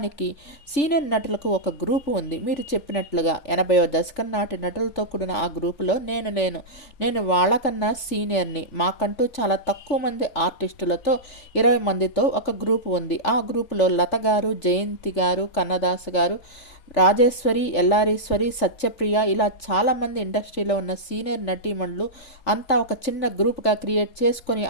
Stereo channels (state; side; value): late; right; 3.4 ms